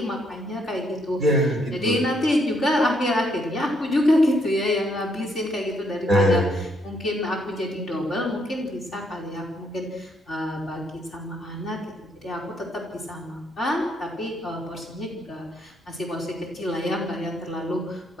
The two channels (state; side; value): normal; both; correlation 0.73